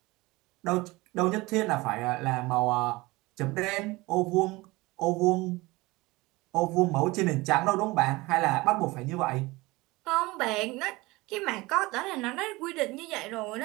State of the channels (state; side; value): quieter; left; 21.8 dB